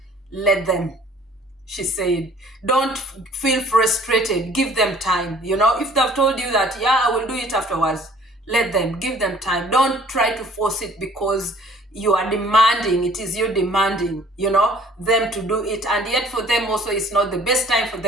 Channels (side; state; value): both; normal; correlation 0.54